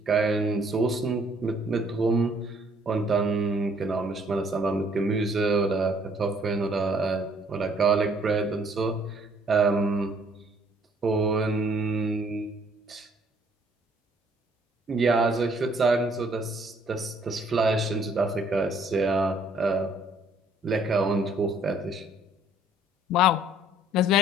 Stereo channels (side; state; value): both; normal; correlation 0.62